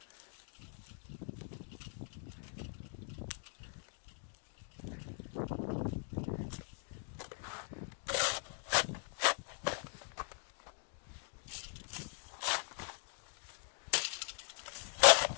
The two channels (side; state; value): right; silent; 51 dB below the other